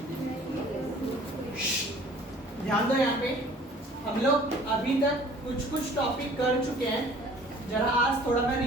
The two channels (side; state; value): both; normal; correlation 0.51